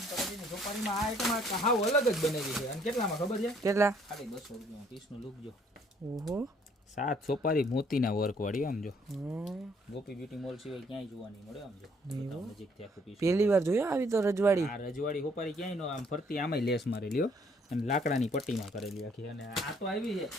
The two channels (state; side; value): normal; both; correlation 0.64